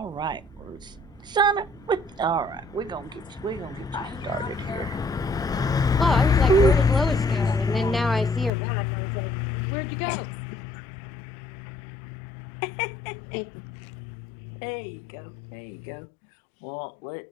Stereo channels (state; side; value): drops out; right; at 8.5 s